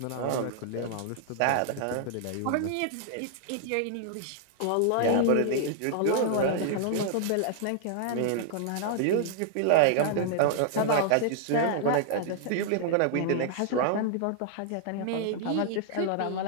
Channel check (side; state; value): both; different; correlation -0.01